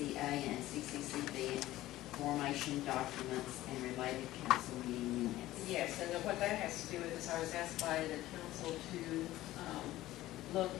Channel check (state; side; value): quieter; right; 15.8 dB